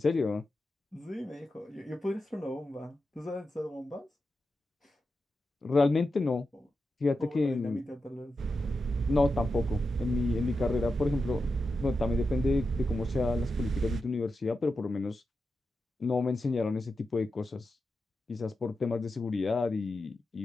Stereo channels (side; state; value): both; normal; correlation 0.89